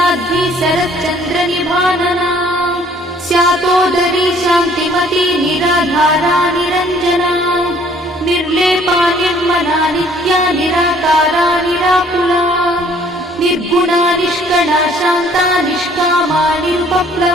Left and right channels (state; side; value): normal; both; correlation 0.58